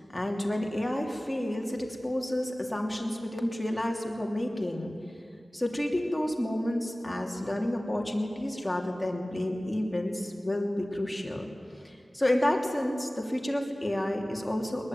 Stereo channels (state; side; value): normal; both; correlation 0.98